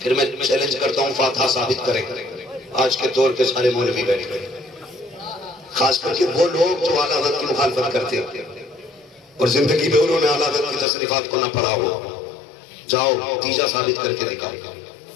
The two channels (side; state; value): right; drops out; at 10.9 s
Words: میں چیلنج کرتا ہوں فاتحہ ثابت کریں. آج کے دور کے سارے مولوی بیٹھ گئے, خاص کر کے وہ لوگ جو اعلیٰ حضرت کی مخالفت کرتے ہیں اور زندگی میں انہوں نے اعلیٰ حضرت کی تصنیفات کو نہ پڑھا ہو. جاؤ تیجا ثابت کر کے دکھاؤ,